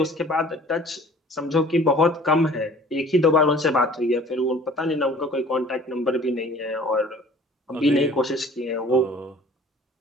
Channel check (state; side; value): normal; both; correlation 0.49